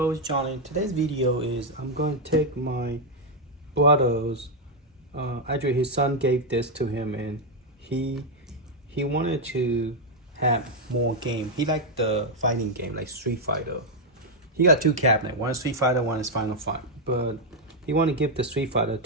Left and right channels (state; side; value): normal; both; correlation 0.00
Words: it's Johnny. Today's video is I'm going to take my brother's. Actually, his son gave this to him, and he wanted to have more game. He liked the fighting game, like Street Fighter. He got two cabinets. One is Street Fighter, one is Final Fight. But he wanted to give the Street Fighter